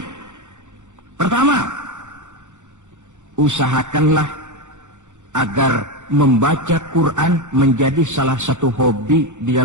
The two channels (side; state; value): left; late; 0.85 ms